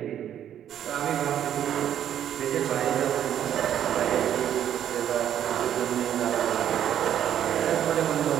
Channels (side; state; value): left; quieter; 10.3 dB